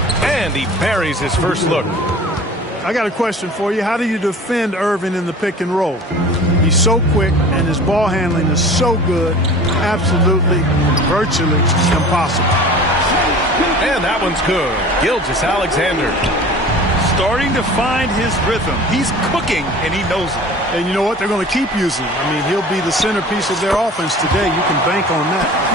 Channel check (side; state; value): both; normal; correlation 0.42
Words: And he buries his first look. I got a question for you. How do you defend Irving in the pick and roll? He's so quick, and his ball handling is so good. Absolutely, virtually impossible. And that one's good. Gilgeous-Alexander. Starting to find his rhythm. He's cooking, and he knows it. And you know what? They're going to keep using him. I mean, he'll be the centerpiece of their offense today. You can bank on